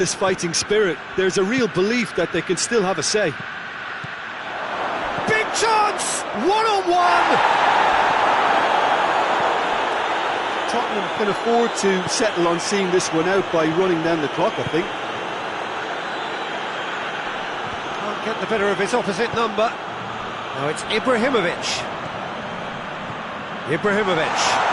fighting spirit. There's a real belief that they can still have a say. Big chance! One-on-one! Tottenham can afford to settle on seeing this one out by running down the clock, I think. Can't get the better of his opposite number. Now it's Ibrahimovic. Ibrahimovic.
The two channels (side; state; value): both; identical; correlation 1.00